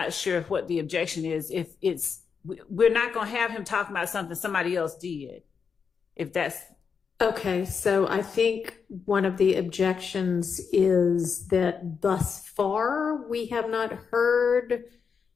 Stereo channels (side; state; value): right; quieter; 6.1 dB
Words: sure what the objection is. If we're not going to have him talking about something somebody else did. If that's okay. So I think one of the objections is that thus far we have not heard